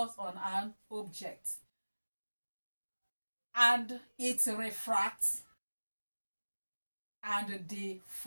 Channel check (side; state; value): both; inverted; correlation -1.00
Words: on an object, and it refracts and